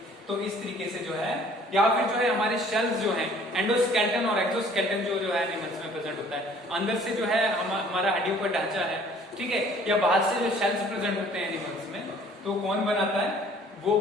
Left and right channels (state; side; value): normal; both; correlation 0.55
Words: तो इस तरीके से जो है, या फिर जो है हमारे शेल्स जो हैं, एंडोस्केलेटन और एक्सोस्केलेटन जो है एनिमल्स में प्रेजेंट होता है। अंदर से जो है हमारा हड्डियों का ढांचा है, ठीक है, या बाहर से जो शेल्स प्रेजेंट होते हैं एनिमल्स में, तो कौन बनाता है, वो